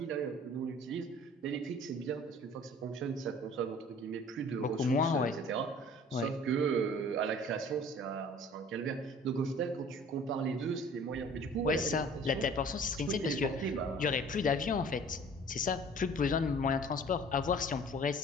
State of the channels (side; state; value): both; normal; correlation 0.48